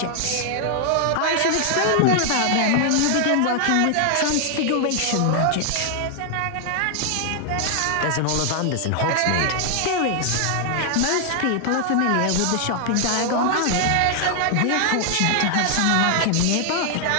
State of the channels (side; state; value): both; different; correlation 0.00